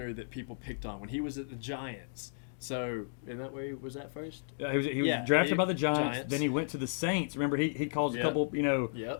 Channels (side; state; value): right; silent; digital silence